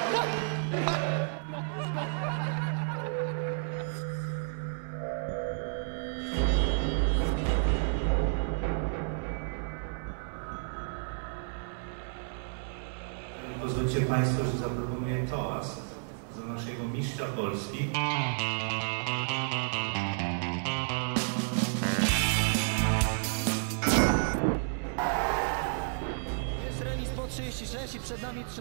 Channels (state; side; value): silent; left; 57 dB below the other